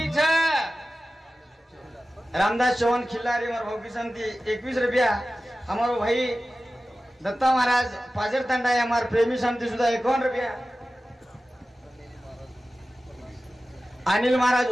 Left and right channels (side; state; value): both; normal; correlation 0.95